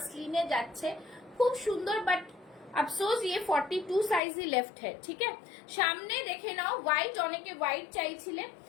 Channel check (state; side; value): drops out; right; at 4.2 s